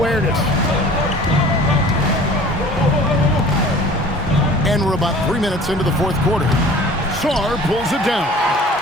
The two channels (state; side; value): normal; both; correlation 0.46